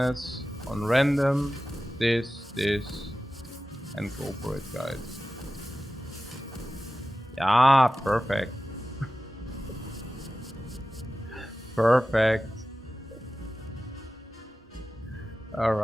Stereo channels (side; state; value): both; normal; correlation 0.95